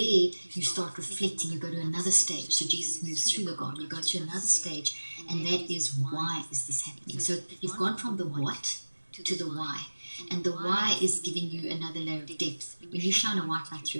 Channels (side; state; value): both; inverted; correlation -1.00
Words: start reflecting. You go to another stage. So Jesus moves through the garden. You go to another stage, and that is, why is this happening? So you've gone from the what to the why. And the why is giving you another layer of depth. When you shine a white light